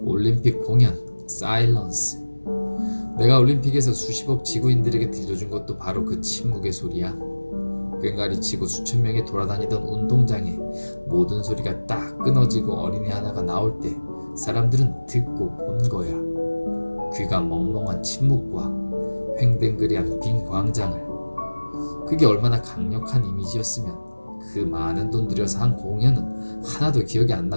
올림픽 공연, 사일런스. 내가 올림픽에서 수십억 지구인들에게 들려준 것도 바로 그 침묵의 소리야. 꽹가리 치고 수천 명이 돌아다니던 운동장에 모든 소리가 딱 끊어지고 어린애 하나가 나올 때 사람들은 듣고 본 거야. 귀가 멍멍한 침묵과 횡댕그레한 빈 광장을. 그게 얼마나 강력한 이미지였으면 그 많은 돈 들여서 한 공연은 하나도 기억이 안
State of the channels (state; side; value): inverted; both; correlation -1.00